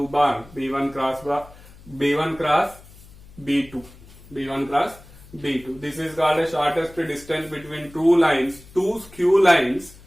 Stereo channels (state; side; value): noise; left; hum, 22 dB below the sound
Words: bar, B1 cross B2, B1 cross B2. This is called a shortest distance between two lines, two skew lines,